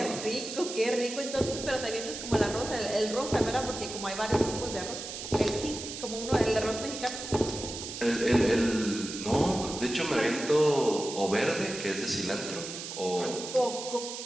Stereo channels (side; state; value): right; noise; hiss, 8 dB below the sound